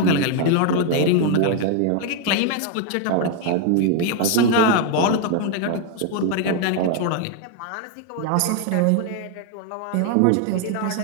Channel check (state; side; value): different; both; correlation 0.01